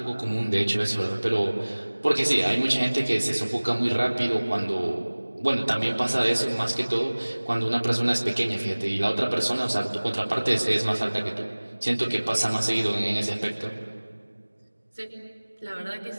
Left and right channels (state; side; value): inverted; both; correlation -1.00